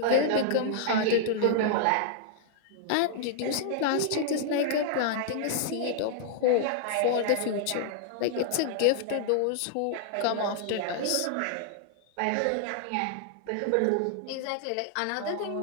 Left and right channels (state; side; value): different; both; correlation -0.01